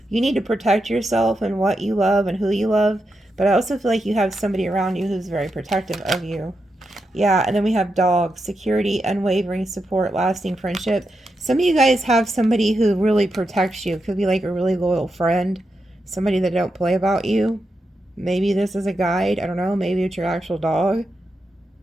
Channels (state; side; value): normal; both; correlation 0.86